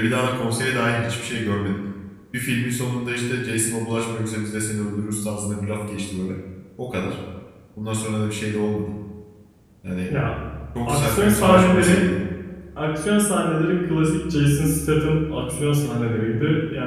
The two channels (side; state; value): both; identical; correlation 1.00